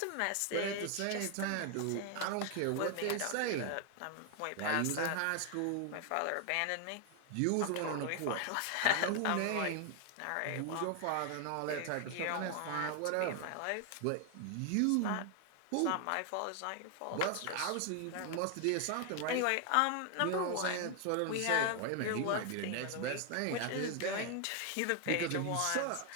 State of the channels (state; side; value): different; both; correlation 0.00